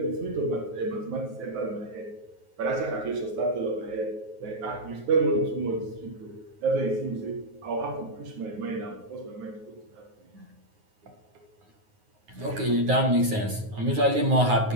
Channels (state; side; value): late; left; 9.5 ms